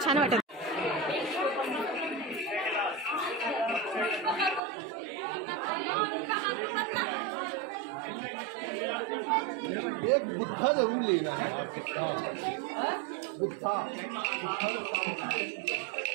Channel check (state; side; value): drops out; left; at 4.6 s